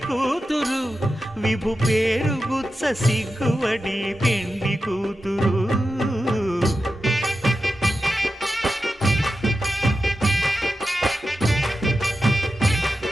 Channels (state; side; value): normal; both; correlation 0.91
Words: కూతురు విభు పేరు గుత్స సిగ్గువడి పెండి కూతురు